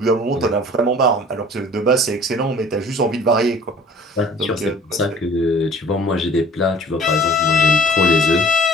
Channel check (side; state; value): both; normal; correlation 0.49